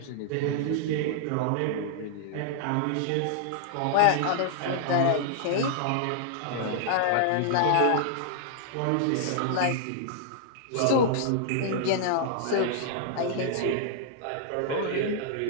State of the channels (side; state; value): both; different; correlation -0.01